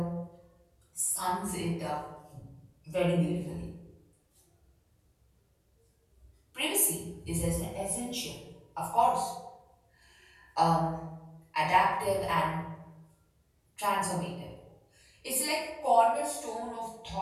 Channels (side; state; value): both; identical; correlation 1.00